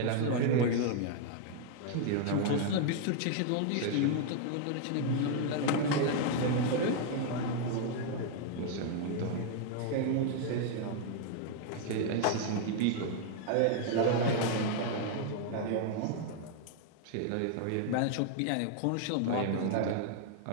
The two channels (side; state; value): both; different; correlation 0.00